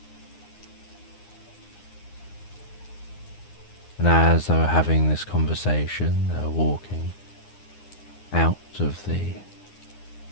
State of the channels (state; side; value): late; right; 9.7 ms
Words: And as they were having this conversation, they were walking out of the